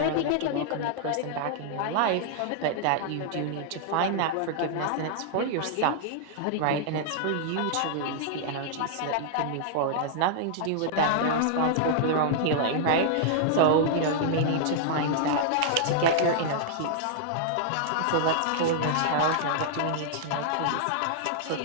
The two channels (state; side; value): different; both; correlation -0.01